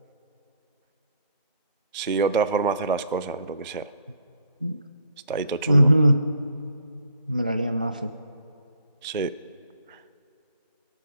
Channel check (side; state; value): both; inverted; correlation -0.63